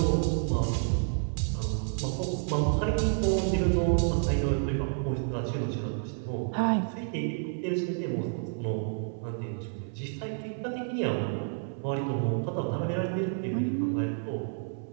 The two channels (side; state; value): left; silent; 58 dB below the other